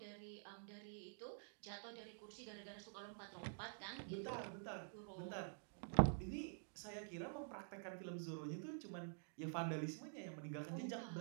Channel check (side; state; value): left; silent; digital silence